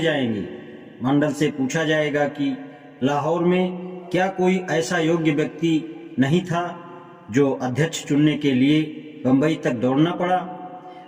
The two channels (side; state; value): both; identical; correlation 1.00